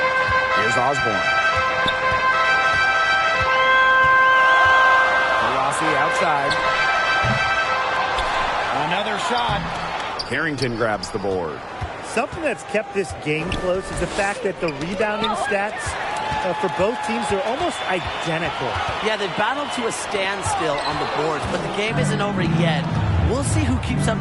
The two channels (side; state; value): both; identical; correlation 1.00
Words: Here's Osborne. Outside. Another shot. Carrington grabs the board. Something that's kept this game close is the fact that the rebounding stats for both teams are almost identical. Yeah, they battled to a standstill on the boards, but the game isn't over yet. We'll see who keeps